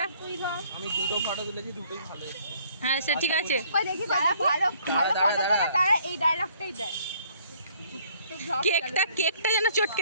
তুই ধর। আমি দুটো ফটো তুলেছি, দুটোই ভালো এসেছে। হ্যাঁ সে ঠিক আছে। কই দেখি যারা ভালো ভালো দাঁড়া, ফটো দাঁড়া। তোলে তারা এই ডায়লগটাই দেয়। কেকটা যেন চটকে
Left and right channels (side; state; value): both; inverted; correlation -0.61